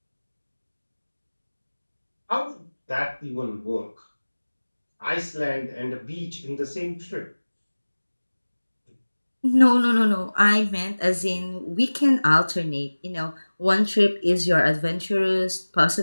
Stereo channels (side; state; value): both; inverted; correlation -1.00